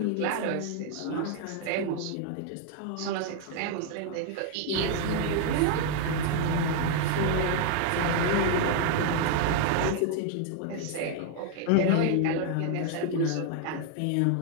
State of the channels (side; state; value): both; different; correlation 0.00